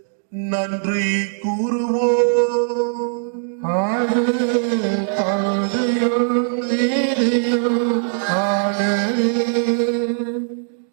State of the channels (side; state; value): left; silent; digital silence